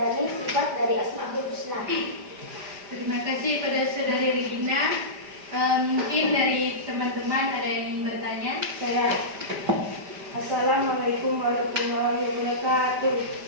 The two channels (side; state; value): left; late; 5.0 ms